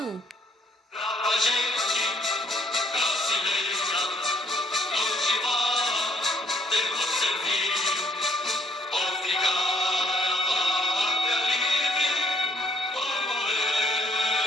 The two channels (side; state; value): both; normal; correlation 0.67